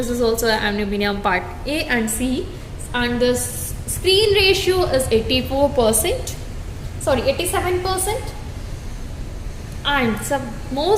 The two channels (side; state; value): both; identical; correlation 1.00